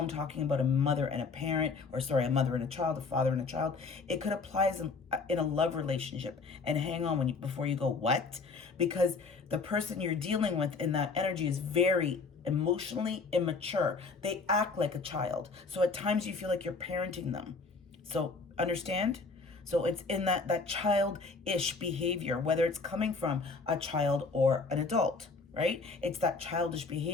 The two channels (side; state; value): right; quieter; 4.3 dB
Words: talking about a mother and a parent, or sorry, a mother and a child, a father and a child, it could apply as in a love relationship. And hang on before you go, what? Because the person you're dealing with in that energy is very emotionally immature. They act like a child. So at times you feel like you're parenting them. So understand? So it's in that childish behavior, whether it's coming from a child or an adult, right? It's that childish